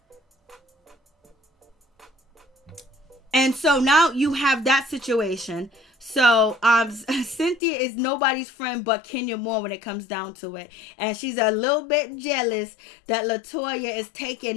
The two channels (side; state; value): right; drops out; at 7.6 s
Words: And so now you have that situation. So, Cynthia is nobody's friend but Kenya Moore when it comes down to it. And she's a little bit jealous that Latoya is